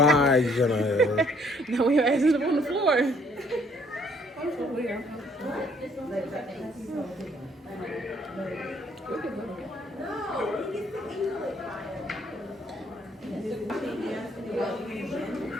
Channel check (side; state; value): both; normal; correlation 0.63